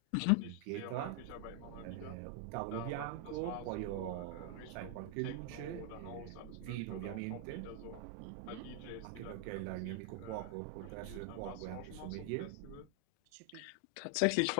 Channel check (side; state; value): both; different; correlation 0.00